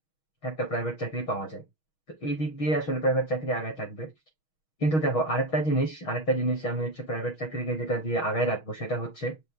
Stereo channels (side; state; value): right; late; 6.3 ms